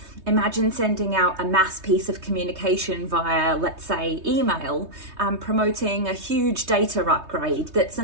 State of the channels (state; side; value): late; left; 3.2 ms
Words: Imagine sending out a mass piece of communication via, let's say, email, promoting a huge data upgrade that's